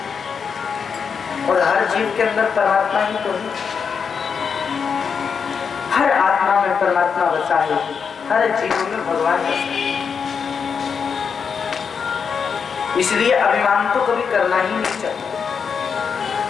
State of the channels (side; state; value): right; quieter; 6.3 dB